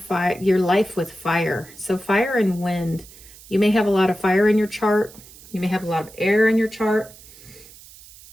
life with fire. So fire and wind. You may have a lot of fire in your chart. You may have a lot of air in your chart.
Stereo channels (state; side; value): noise; right; hiss, 21 dB below the sound